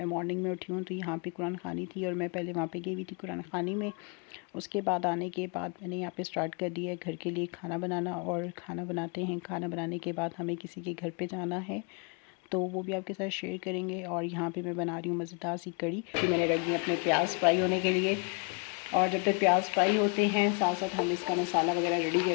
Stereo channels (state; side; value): quieter; right; 35.4 dB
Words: मॉर्निंग में उठी हूँ तो यहाँ पे कुरान ख़ानी थी और मैं पहले वहाँ पे गई हुई थी कुरान ख़ानी में। उसके बाद आने के बाद मैंने यहाँ पे स्टार्ट कर दिया है घर के लिए खाना बनाना, और खाना बनाते हैं। खाना बनाने के बाद हमें किसी के घर पर जाना है, तो वो भी आपके साथ शेयर करेंगे। और यहाँ पे मैं बना रही हूँ मज़ेदार सी कड़ी कि मैंने रख दी अपने प्याज फ्राई होने के लिए। और जब तक प्याज फ्राई होते हैं साथ साथ हम इसका मसाला वगैरह रेडी